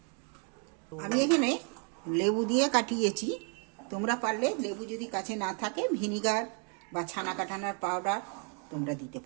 আমি এখানে লেবু দিয়ে কাটিয়েছি। তোমরা পারলে লেবু যদি কাছে না থাকে, ভিনিগার বা ছানা কাটানোর পাউডার তোমরা দিতে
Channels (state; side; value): quieter; left; 37.4 dB